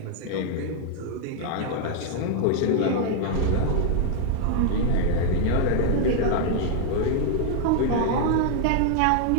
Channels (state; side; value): different; both; correlation 0.00